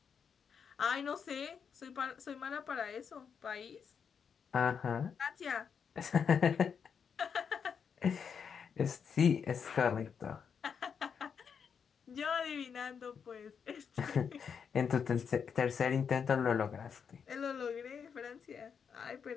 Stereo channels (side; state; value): right; quieter; 6.8 dB